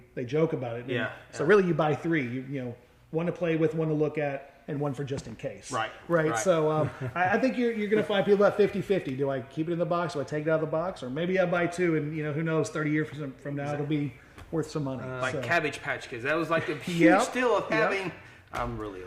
joke about it. Yeah. So really, you buy 3. One to play with, one to look at, and one for just in case. Right. So I think you're going to find people about 50-50. Do I keep it in the box? Do I take it out of the box? Or maybe I buy 2, and who knows? 30 years from now, it'll be worth some money. Like Cabbage Patch Kids. That was like the huge deal of having. I'm really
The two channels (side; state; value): both; identical; correlation 1.00